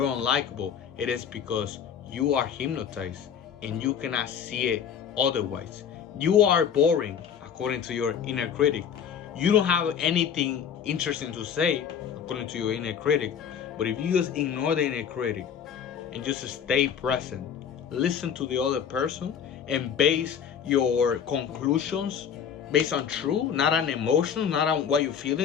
unlikable. It is because you are hypnotized and you cannot see it otherwise. You are boring according to your inner critic. You don't have anything interesting to say according to your inner critic. But if you just ignore the inner critic and just stay present, listen to the other person, and base your conclusions based on truth, not on emotions, not on what you're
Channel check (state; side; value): quieter; right; 7.9 dB